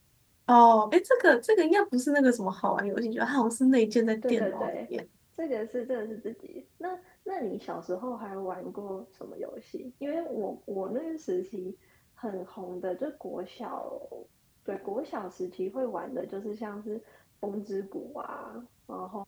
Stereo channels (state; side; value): identical; both; correlation 1.00